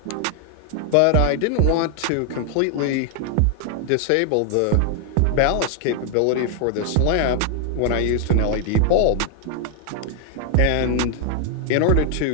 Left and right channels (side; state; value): both; different; correlation 0.00